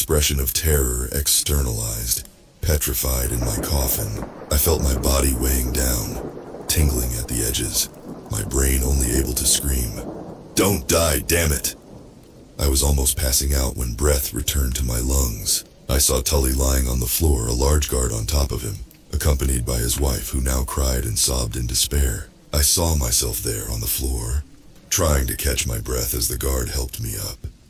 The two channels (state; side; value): identical; both; correlation 1.00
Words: of terror externalized, petrified in my coffin. I felt my body weighing down, tingling at the edges, my brain only able to scream, "Don't die, damn it!" I was almost passing out when breath returned to my lungs. I saw Tully lying on the floor, a large guard on top of him, accompanied by his wife, who now cried and sobbed in despair. I saw myself there on the floor, trying to catch my breath as the guard helped me up.